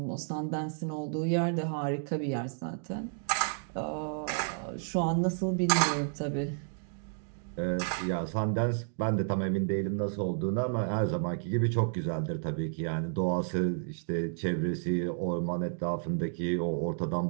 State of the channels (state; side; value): silent; left; digital silence